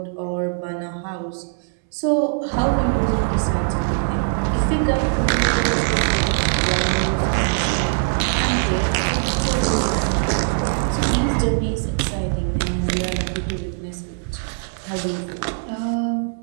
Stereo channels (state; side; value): silent; left; 65 dB below the other